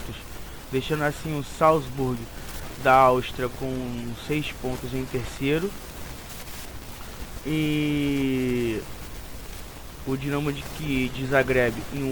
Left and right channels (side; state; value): both; identical; correlation 1.00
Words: deixando assim o Salzburg da Áustria com 6 pontos em terceiro e o Dinamo de Zagreb em